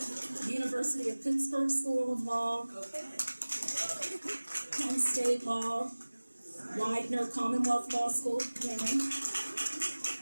University of Pittsburgh School of Law, Penn State Law, Widener Commonwealth Law School,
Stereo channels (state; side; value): inverted; both; correlation -1.00